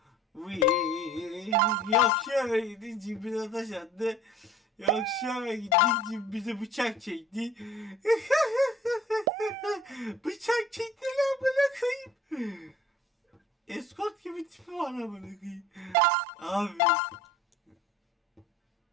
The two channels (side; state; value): both; normal; correlation 0.48